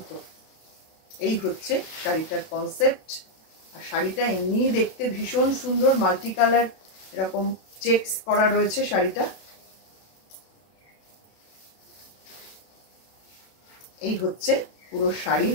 এই হচ্ছে শাড়িটার কনসেপ্ট। আর শাড়িটা এমনি দেখতে ভীষণ সুন্দর, মাল্টি কালার এরকম চেকস করা রয়েছে শাড়িটা। এই হচ্ছে পুরো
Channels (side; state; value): right; late; 32 ms